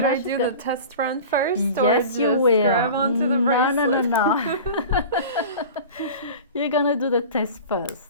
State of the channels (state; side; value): inverted; both; correlation -0.36